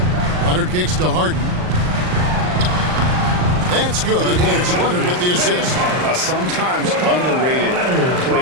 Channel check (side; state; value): left; late; 39 ms